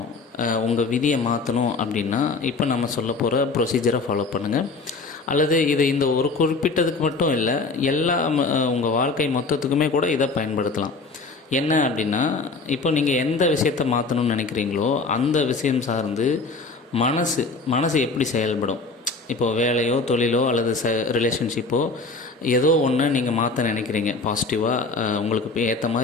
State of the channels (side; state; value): right; quieter; 3.9 dB